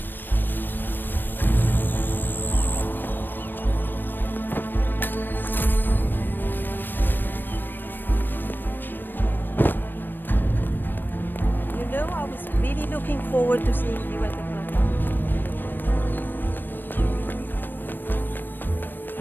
Looking forward to seeing you at the front.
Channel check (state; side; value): late; right; 0.093 ms